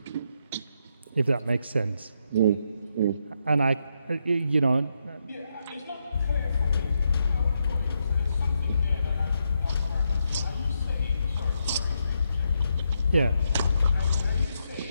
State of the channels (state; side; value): inverted; both; correlation -0.80